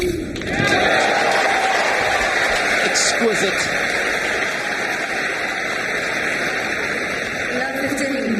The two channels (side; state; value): both; identical; correlation 1.00